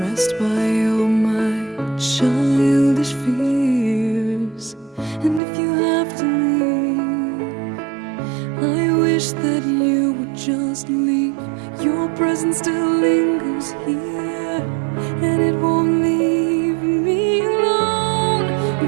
by all my childish fears. And if you have to leave, I wish that you would just leave. Your presence still lingers here, and it won't leave me alone.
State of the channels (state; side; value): drops out; left; at 5.4 s